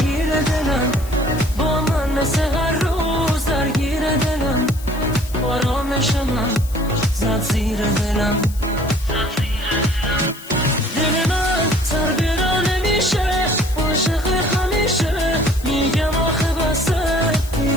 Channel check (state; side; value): noise; left; hiss, 18 dB below the sound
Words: دلم با من مثل هر روز درگیر دلم آرامش من زد زیر دلم